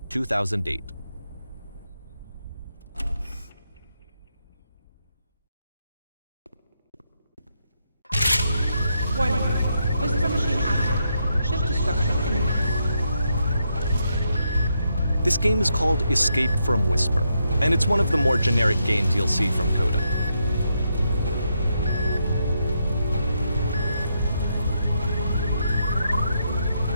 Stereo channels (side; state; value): both; inverted; correlation -0.80